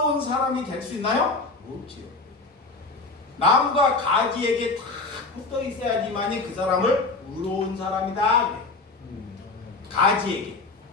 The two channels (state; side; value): quieter; right; 3.7 dB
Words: 사람이 될 수 있나요? 없지요. 나무가 가지에게 다 붙어 있어야지만이 그 사람을 의로운 사람이다. 가지에게.